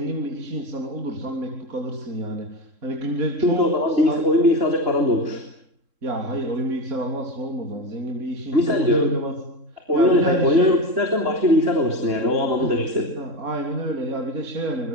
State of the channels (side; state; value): left; late; 3.7 ms